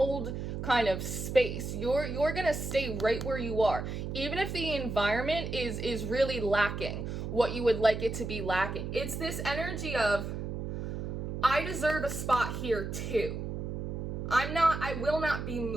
kind of space. You're gonna stay right where you are, even if the environment is really lacking what you would like it to be lacking. It's this energy of, I deserve a spot here too. I will not be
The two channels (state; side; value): noise; right; hum, 5 dB below the sound